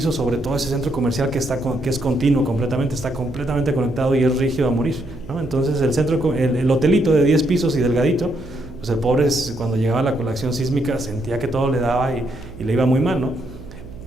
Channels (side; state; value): right; noise; hum, 16 dB below the sound